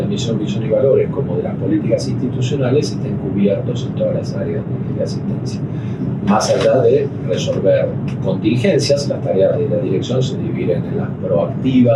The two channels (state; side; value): identical; both; correlation 1.00